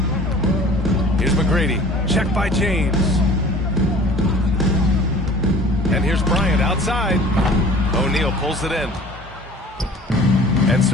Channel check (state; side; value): normal; both; correlation 0.47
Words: Here's McGrady. Checked by James. And here's Bryant outside. O'Neal pulls it in. And